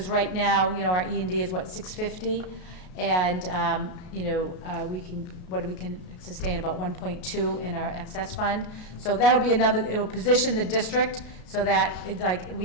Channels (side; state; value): right; late; 33 ms